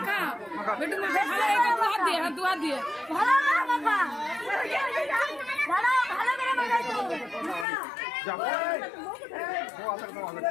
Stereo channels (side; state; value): right; drops out; at 7.7 s